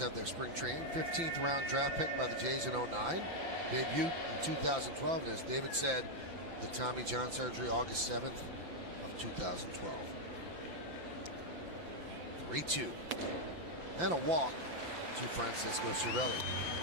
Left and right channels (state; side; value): late; left; 5.9 ms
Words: their spring training. 15th round draft pick by the Jays in 09. Debut in 2012. And as David said, the Tommy John surgery August 7th of 2012. 3-2. And a walk to Francisco Cervelli.